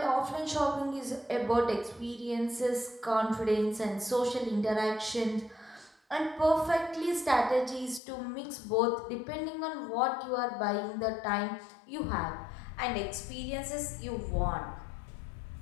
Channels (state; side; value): drops out; right; at 8.0 s